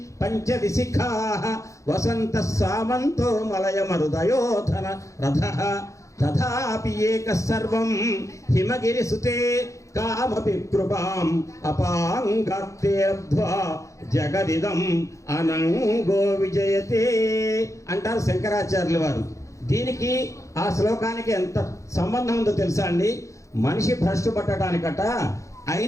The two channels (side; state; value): right; late; 0.15 ms